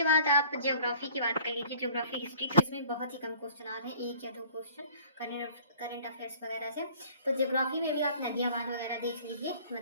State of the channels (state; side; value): inverted; both; correlation -0.51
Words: बाद आप ज्योग्राफी की बात कर लीजिए, ज्योग्राफी हिस्ट्री, तो इसमें बहुत ही कम क्वेश्चन आ रहे हैं, एक या दो क्वेश्चन करंट अफेयर्स वगैरह से। तो ज्योग्राफी में भी आप नदियाँ, बांध वगैरह देख लीजिए,